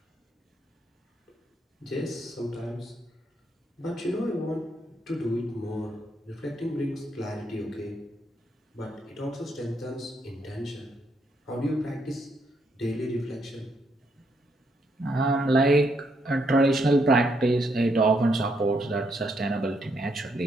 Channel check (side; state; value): both; normal; correlation 0.75